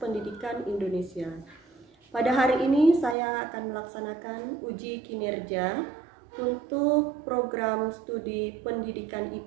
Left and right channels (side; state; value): left; drops out; at 3.2 s